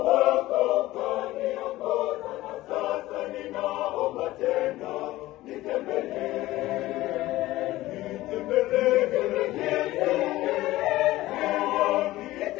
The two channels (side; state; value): right; quieter; 17.0 dB